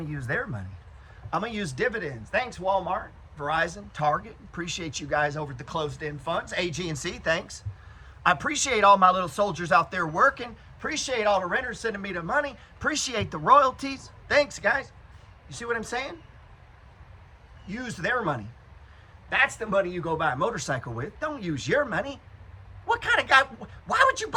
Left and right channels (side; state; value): both; identical; correlation 1.00